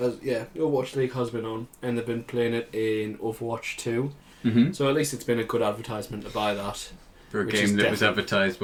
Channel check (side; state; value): both; identical; correlation 1.00